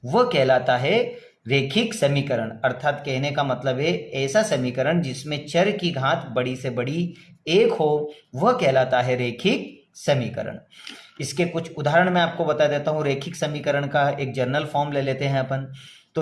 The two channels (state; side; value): identical; both; correlation 1.00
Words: वह कहलाता है रेखिक समीकरण। अर्थात कहने का मतलब है ऐसा समीकरण जिसमें चर की घात बड़ी से बड़ी 1 हो, वह कहलाता है रेखिक समीकरण। इसके कुछ उदाहरण मैं आपको बता देता हूँ। रेखिक समीकरण का एक जर्नल फॉर्म ले लेते हैं अपन। तो